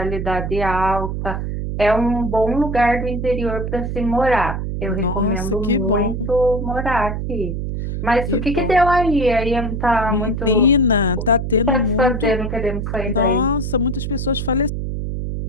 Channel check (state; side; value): noise; right; hum, 3 dB below the sound